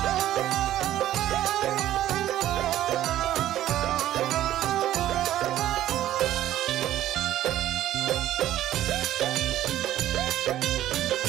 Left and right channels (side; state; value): left; quieter; 13.1 dB